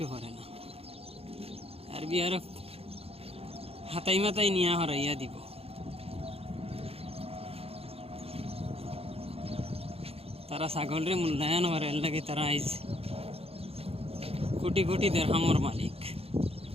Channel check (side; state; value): left; late; 0.28 ms